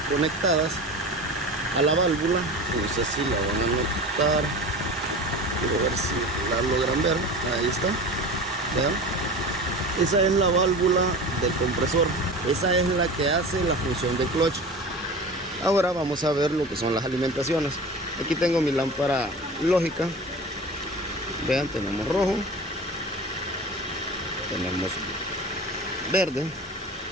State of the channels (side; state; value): both; normal; correlation 0.33